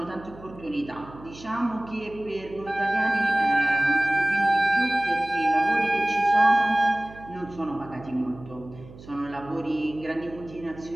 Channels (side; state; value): right; noise; hum, 19 dB below the sound